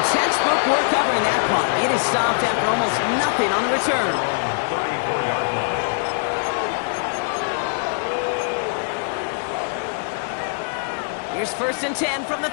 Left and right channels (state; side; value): silent; right; 62 dB below the other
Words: textbook work covering that punt. It is stopped after almost nothing on the return. 34-yard line. Here's 1st and 10 from the